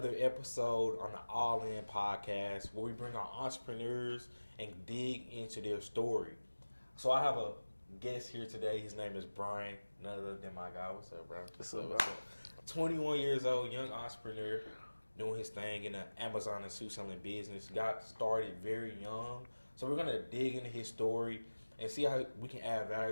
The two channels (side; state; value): both; inverted; correlation -1.00